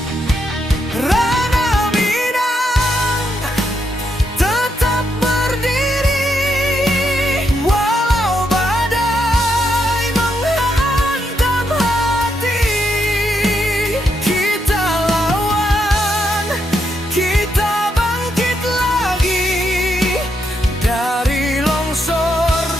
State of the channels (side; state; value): both; normal; correlation 0.80